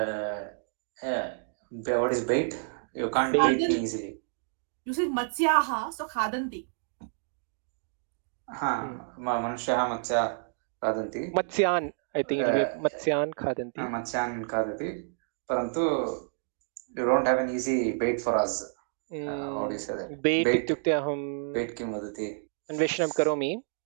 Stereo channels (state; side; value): silent; left; digital silence